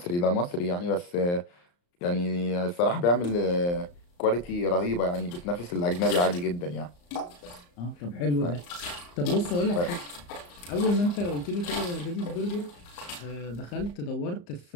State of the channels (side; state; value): right; late; 34 ms